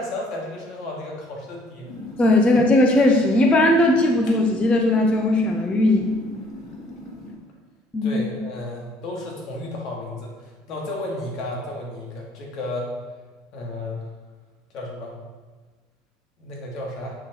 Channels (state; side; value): normal; both; correlation 0.61